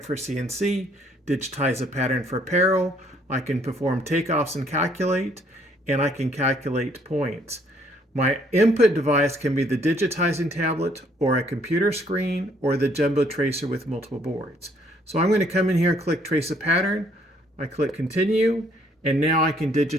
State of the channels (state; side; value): normal; both; correlation 0.65